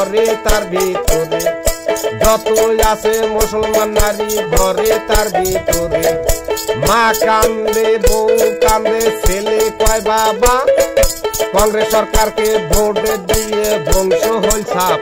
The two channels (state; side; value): identical; both; correlation 1.00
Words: তার ভিতরে, যত আছে মুসলমান নারী ঘরে তার ভিতরে। মা কান্দে বউ কান্দে ছেলে কয় বাবা, কংগ্রেস সরকারকে ভোট দিয়ে ধ্বংস হল